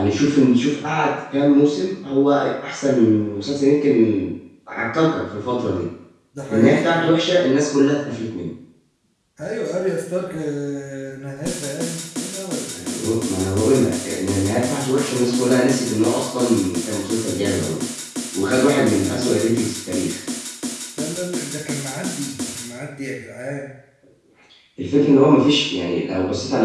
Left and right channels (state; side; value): identical; both; correlation 1.00